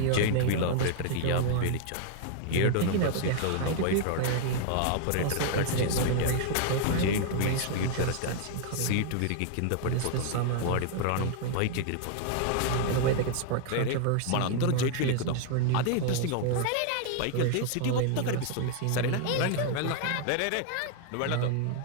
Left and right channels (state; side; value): different; both; correlation 0.00